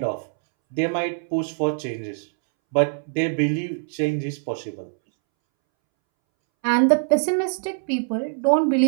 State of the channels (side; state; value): left; silent; 63 dB below the other